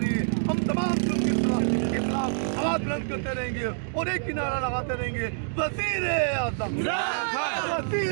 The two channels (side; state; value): left; silent; digital silence